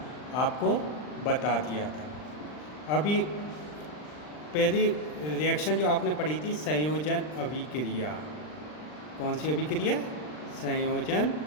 आपको बता दिया था। अभी पहली रिएक्शन जो आपने पढ़ी थी संयोजन अभिक्रिया। कौन सी अभिक्रिया? संयोजन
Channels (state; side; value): late; right; 39 ms